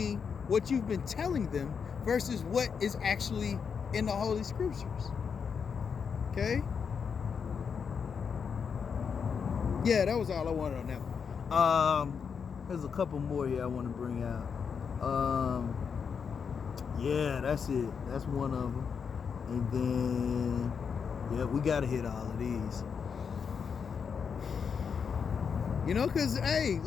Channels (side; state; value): right; quieter; 6.4 dB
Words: what you've been telling them versus what is actually in the Holy Scriptures. Okay? Yeah, that was all I wanted on that one. There's a couple more here I want to bring out. Yeah, that's it. That's one of them. And then, yeah, we got to hit all of these. You know, because, hey,